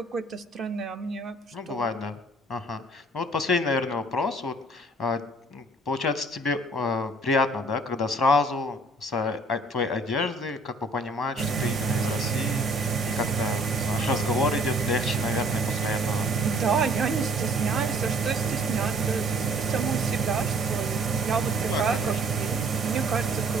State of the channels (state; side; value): normal; both; correlation 0.56